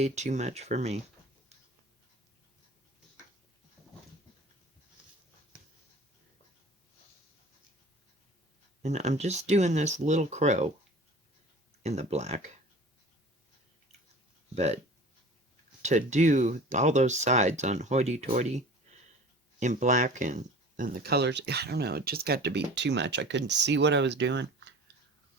too much for me. And I'm just doing this little crow in the black. But to do all those sides on hoity-toity in black and the colors, I don't know, it just got to be too much. I couldn't see what I was doing.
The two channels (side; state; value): both; normal; correlation 0.42